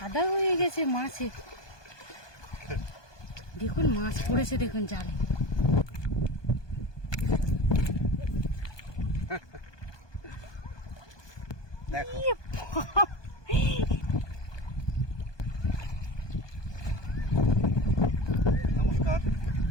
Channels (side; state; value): right; late; 1.2 ms